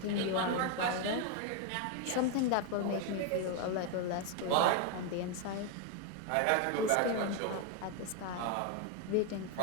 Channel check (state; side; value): different; both; correlation 0.01